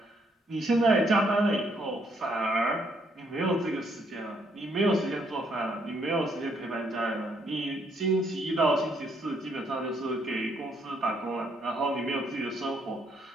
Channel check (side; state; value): both; normal; correlation 0.71